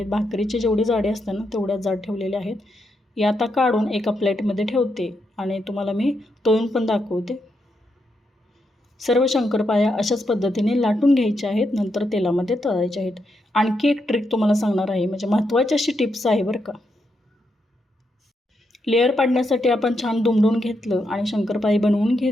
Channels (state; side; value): normal; both; correlation 0.82